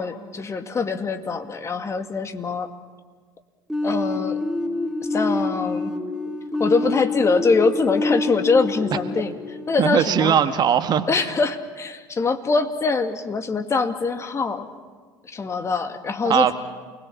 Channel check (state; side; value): normal; both; correlation 0.62